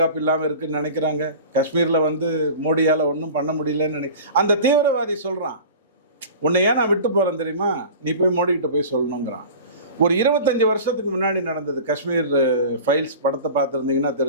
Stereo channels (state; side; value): inverted; both; correlation -0.38